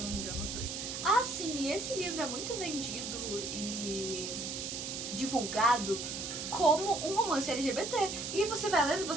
não me engano, os dois. Ah, sim, e esse livro é muito vendido e divulgado como um romance LGBT. E você vai lendo e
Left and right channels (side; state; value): right; noise; hiss, 5 dB below the sound